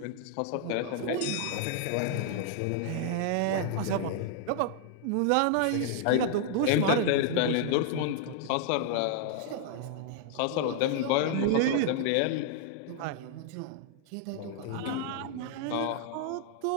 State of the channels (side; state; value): both; different; correlation 0.00